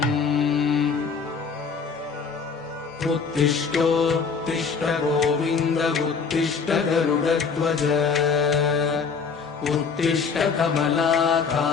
उत्तिष्ठोत्तिष्ठ गोविन्द उत्तिष्ठ गरुडध्वज उत्तिष्ठ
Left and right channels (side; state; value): right; quieter; 5.5 dB